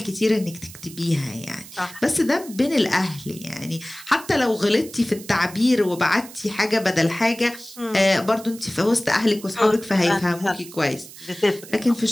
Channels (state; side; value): noise; right; hiss, 17 dB below the sound